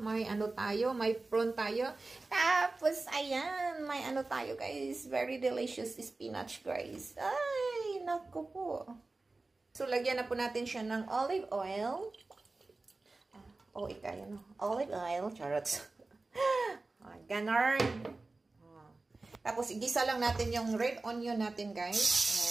may prawn tayo. Tapos ayan, may tayo guys. Very delicious spinach guys. Ay, naku po. So lagyan na po natin siya ng olive oil. Olive oil, charots. Ganon. Tapos, igisa lang natin yung red onion natin, guys.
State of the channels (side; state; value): left; quieter; 3.4 dB